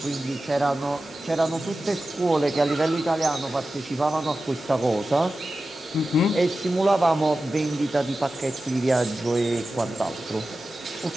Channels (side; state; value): both; normal; correlation 0.94